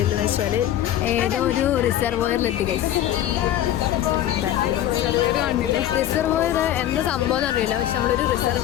വെച്ചാൽ ഏതോ ഒരു റിസർവോയറിലെത്തി ഗൈസ്. റിസർവോയർ എന്താ സംഭവം അറിയില്ല, പക്ഷെ നമ്മളൊരു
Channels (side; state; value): right; quieter; 12.1 dB